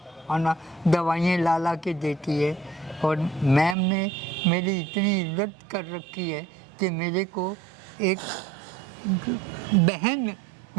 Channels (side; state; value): left; drops out; at 3.8 s